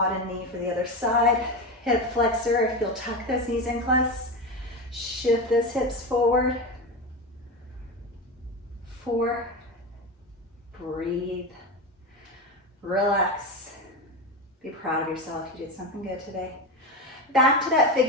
and knee for the other side. Hip flexor, if you'll tuck those knees in close. Shift those hips forward. 4, breathe, relax. Be proud of yourself, you did something good today. Back to that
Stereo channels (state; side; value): normal; both; correlation 0.20